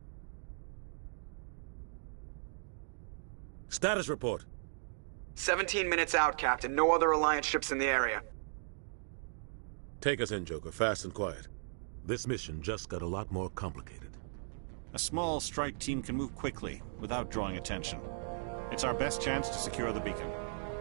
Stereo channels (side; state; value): left; silent; digital silence